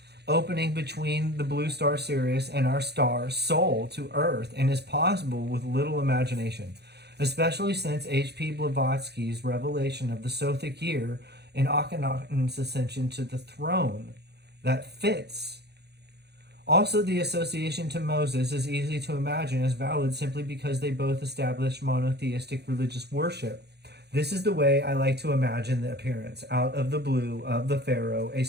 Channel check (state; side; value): late; left; 0.48 ms